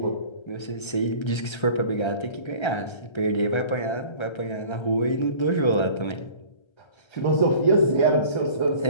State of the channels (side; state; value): right; late; 1.3 ms